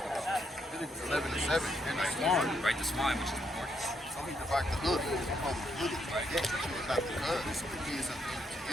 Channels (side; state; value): both; normal; correlation 0.76